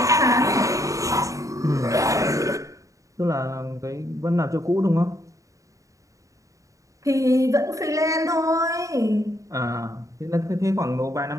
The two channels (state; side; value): late; left; 0.16 ms